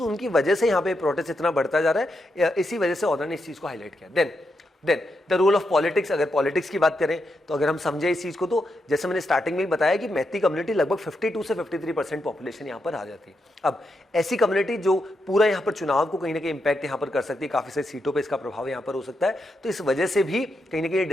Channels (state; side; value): normal; both; correlation 0.84